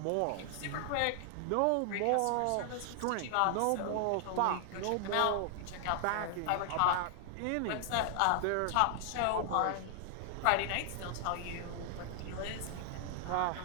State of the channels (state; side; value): different; both; correlation 0.00